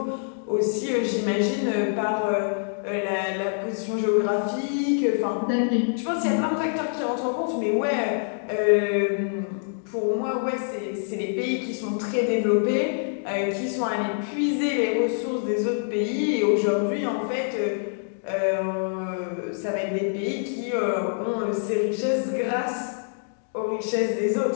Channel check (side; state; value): right; silent; digital silence